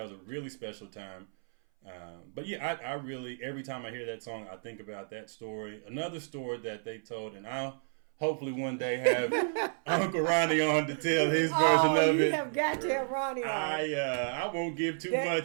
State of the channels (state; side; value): silent; left; 57 dB below the other